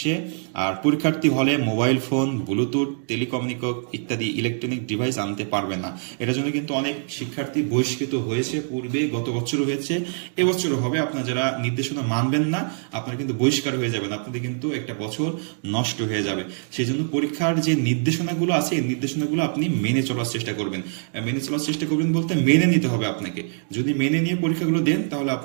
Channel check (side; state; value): left; silent; 63 dB below the other